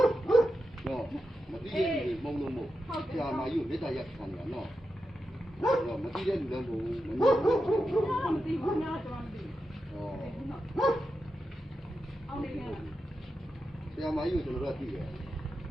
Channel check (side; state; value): both; normal; correlation 0.89